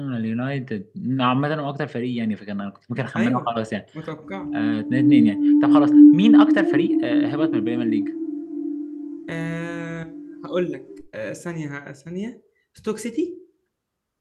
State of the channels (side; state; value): both; identical; correlation 1.00